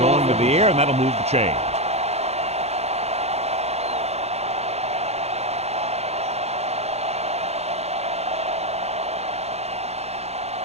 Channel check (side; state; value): left; late; 0.31 ms